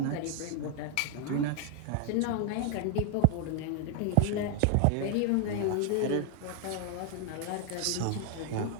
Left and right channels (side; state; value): both; different; correlation 0.00